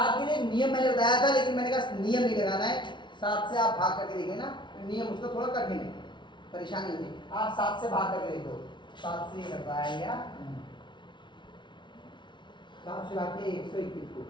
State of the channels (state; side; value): late; right; 0.23 ms